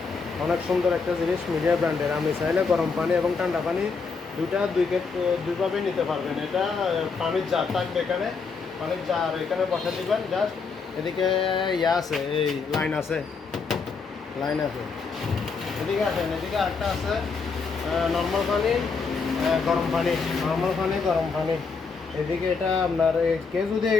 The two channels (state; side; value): quieter; right; 4.9 dB